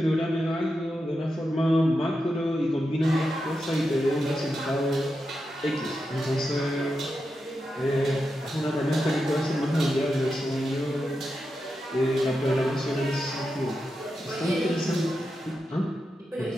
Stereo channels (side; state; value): both; normal; correlation 0.88